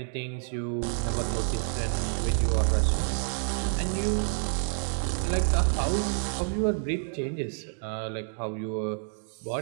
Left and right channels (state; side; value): silent; left; digital silence